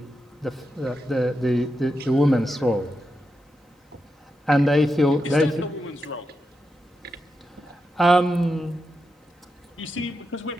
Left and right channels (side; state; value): both; normal; correlation 0.87